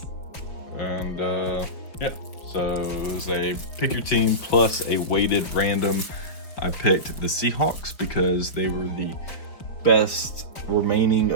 and yeah, so it was a pick your team plus a weighted random. I picked the Seahawks because they were the best remaining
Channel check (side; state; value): right; late; 4.8 ms